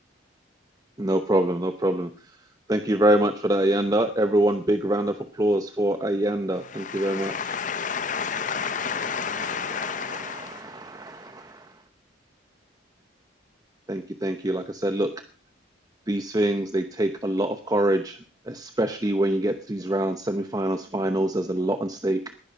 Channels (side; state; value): both; normal; correlation 0.67